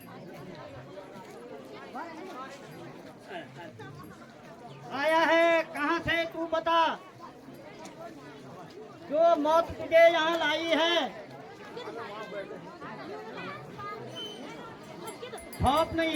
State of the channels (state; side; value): identical; both; correlation 1.00